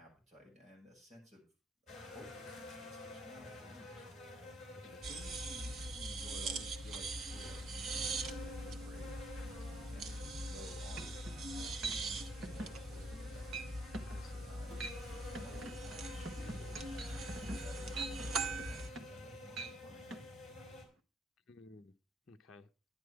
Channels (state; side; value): normal; both; correlation 0.69